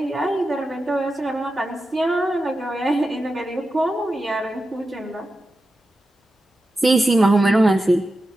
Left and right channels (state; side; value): normal; both; correlation 0.91